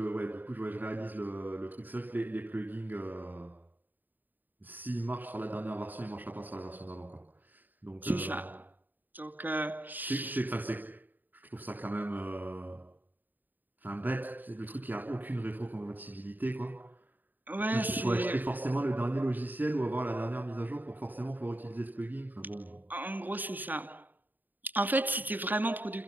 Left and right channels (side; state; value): left; late; 0.088 ms